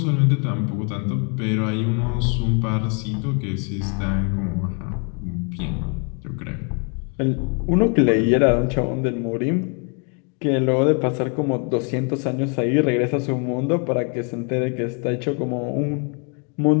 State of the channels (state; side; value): quieter; right; 38.1 dB